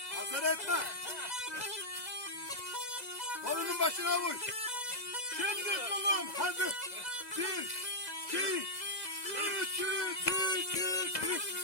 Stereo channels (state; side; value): late; right; 2.0 ms